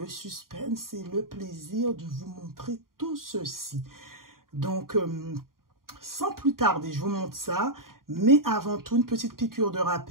suspense et le plaisir de vous montrer tout ceci. Donc, sans plus tarder, je vous montre ça. Mais avant tout, une petite piqûre de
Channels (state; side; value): late; left; 0.91 ms